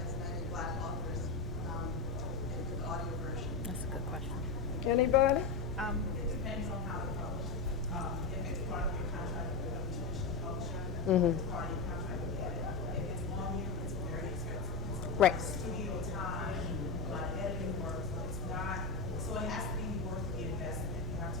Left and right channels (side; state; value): right; quieter; 4.4 dB